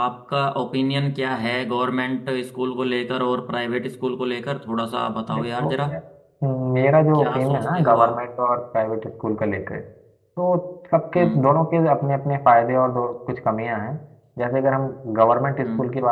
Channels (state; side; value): identical; both; correlation 1.00